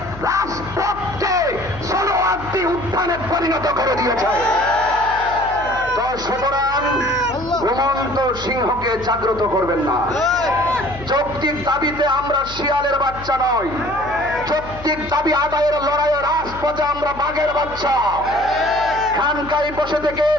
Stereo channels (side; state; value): left; noise; hum, 15 dB below the sound